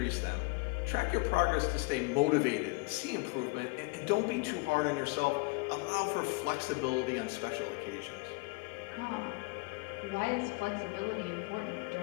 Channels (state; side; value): quieter; right; 26.5 dB